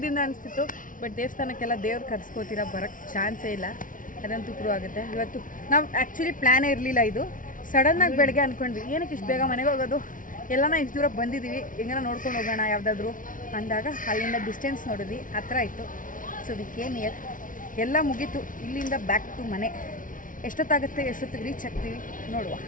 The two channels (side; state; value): right; late; 0.38 ms